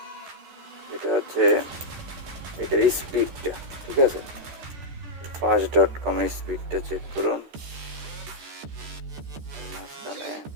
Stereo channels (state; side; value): late; left; 13 ms